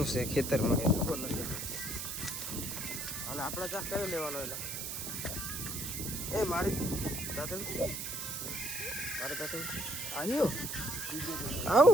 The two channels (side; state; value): right; noise; hiss, 4 dB below the sound